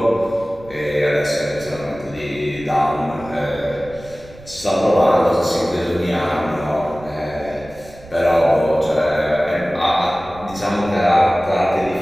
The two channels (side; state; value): right; noise; rumble, 21 dB below the sound